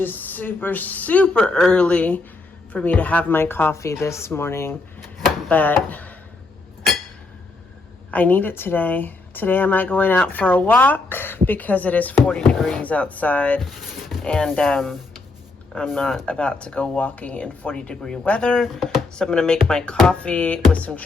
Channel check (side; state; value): right; quieter; 3.5 dB